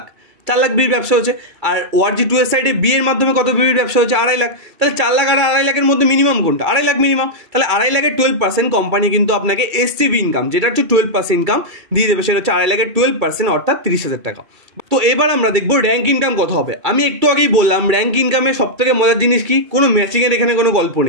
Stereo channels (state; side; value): late; left; 2.3 ms